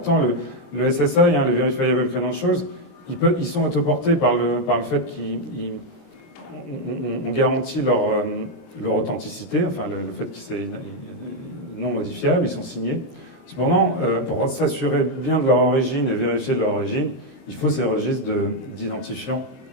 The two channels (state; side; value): late; right; 23 ms